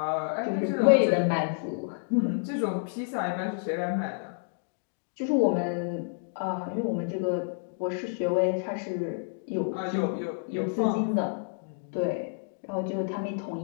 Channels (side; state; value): right; silent; digital silence